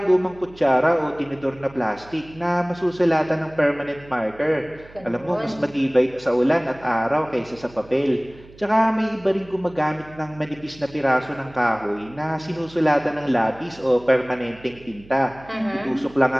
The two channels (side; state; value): right; noise; hum, 22 dB below the sound